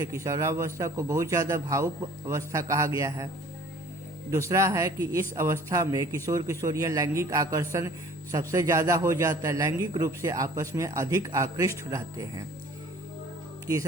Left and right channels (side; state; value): both; normal; correlation 0.50